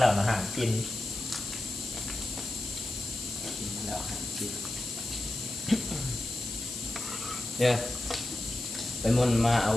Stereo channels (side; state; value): left; noise; hiss, 8 dB below the sound